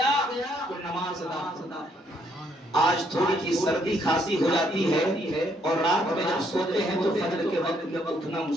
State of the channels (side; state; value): both; normal; correlation 0.71